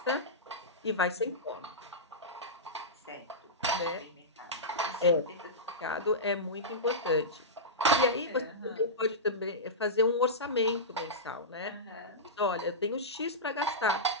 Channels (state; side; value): normal; both; correlation -0.15